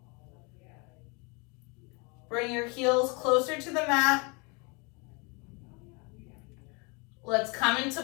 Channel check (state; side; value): quieter; right; 30.7 dB